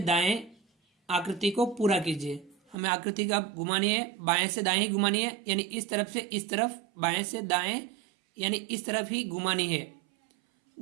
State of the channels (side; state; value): left; drops out; at 2.8 s